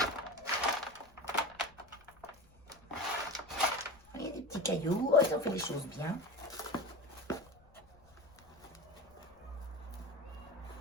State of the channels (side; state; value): left; noise; rumble, 27 dB below the sound